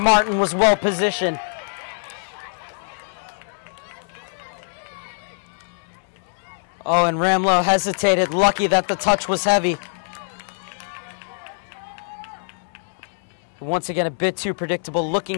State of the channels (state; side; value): silent; right; digital silence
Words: was well positioned. Oh, and Ramlo hesitated, lucky that the touch was heavy. Once again, a bit too predictable looking